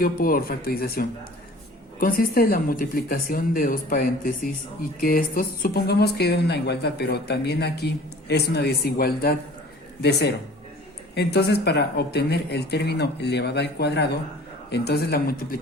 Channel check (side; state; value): both; normal; correlation 0.47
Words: por factorización. Consiste en la multiplicación de dos paréntesis y que estos, supongamos que es una igualdad, pero también aquí es una desigualdad de 0. Entonces, para obtener el término elevado al cuadrado, entonces la